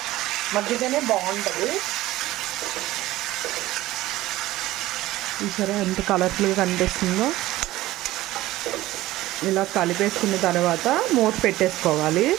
మగ్గితేనే బాగుంటుంది. చూసారా ఎంత కలర్ఫుల్గా కనిపిస్తుందో. ఇలా కలిపేసుకున్న తర్వాత మూత పెట్టేసుకోవాలి.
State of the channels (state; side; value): quieter; left; 16.6 dB